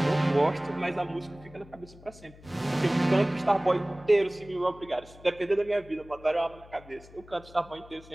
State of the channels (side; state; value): left; noise; hum, 22 dB below the sound